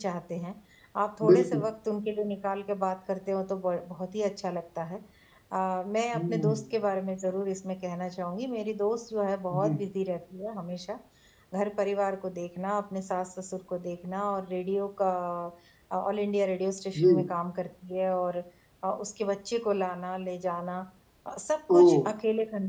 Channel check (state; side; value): identical; both; correlation 1.00